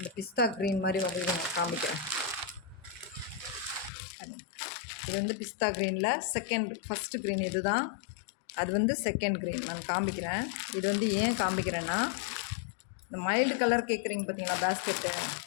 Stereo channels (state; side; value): drops out; right; at 3.9 s